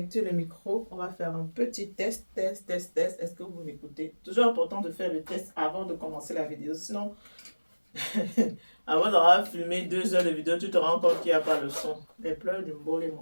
le micro. On va faire un petit test. Est-ce que vous m'écoutez? Toujours important de faire le test avant de commencer la vidéo. Sinon, avant d'avoir filmé 2 heures de vidéo, tu te rends compte qu'il n'y a pas le son. Les pleurs du mbolo,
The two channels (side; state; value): both; inverted; correlation -1.00